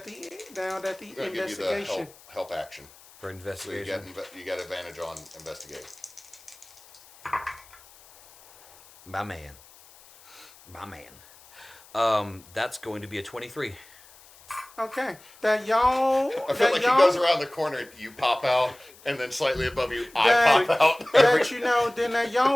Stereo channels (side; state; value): left; noise; hiss, 24 dB below the sound